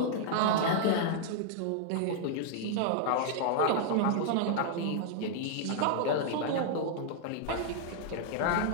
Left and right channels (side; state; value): both; different; correlation -0.01